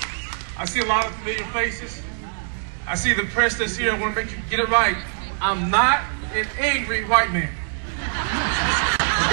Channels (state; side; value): silent; left; digital silence